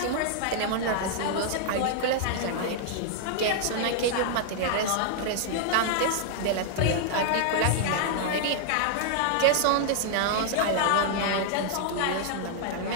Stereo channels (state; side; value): different; both; correlation 0.00